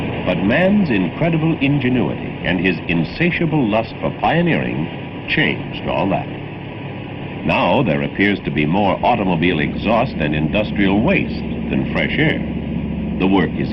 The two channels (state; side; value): identical; both; correlation 1.00